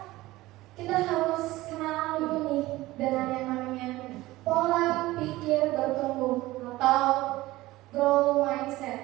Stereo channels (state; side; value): quieter; left; 18.1 dB